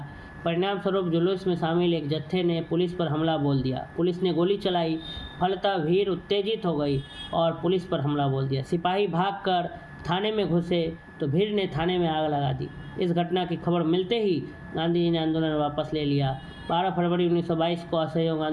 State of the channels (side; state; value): both; identical; correlation 1.00